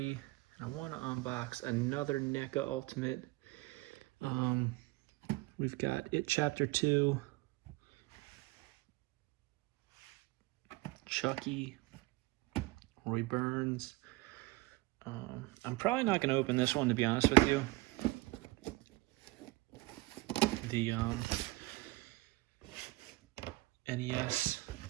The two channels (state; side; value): quieter; left; 20.8 dB